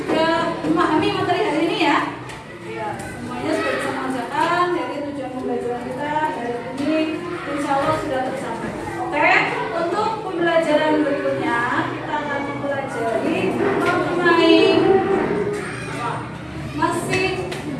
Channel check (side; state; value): both; identical; correlation 1.00